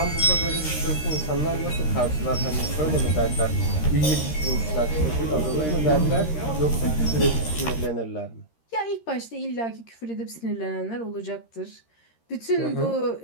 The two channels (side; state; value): right; late; 13 ms